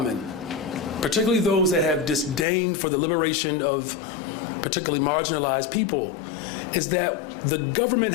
particularly those that have disdain for the liberation of particularly marginalized people, is that the government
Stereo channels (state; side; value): drops out; right; at 2.5 s